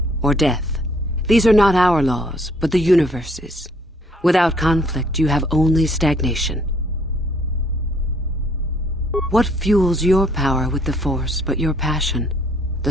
or death. These are not our laws, but the universe's. Without conflict, you have only stagnation. What fuels your power with the Force but your passion?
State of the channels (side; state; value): both; normal; correlation 0.64